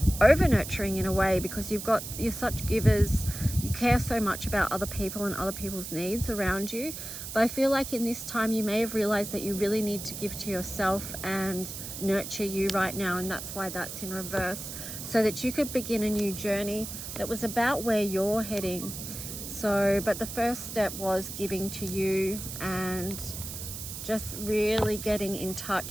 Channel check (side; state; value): right; noise; hiss, 8 dB below the sound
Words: over nurturing in a way, because you're such givers. You care so much about other people and other people's needs around you. But I feel like in this time you may have realized that you really need to give to yourself and nurture you right now, and that's why that's in reverse, so that you could begin a new journey that was about where you're heading. So, but the first step was giving to you and just really getting in